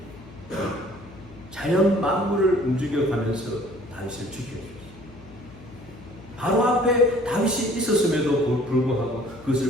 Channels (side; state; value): left; noise; hum, 20 dB below the sound